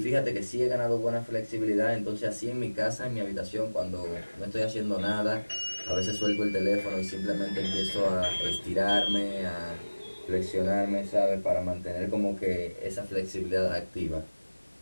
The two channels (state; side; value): inverted; both; correlation -1.00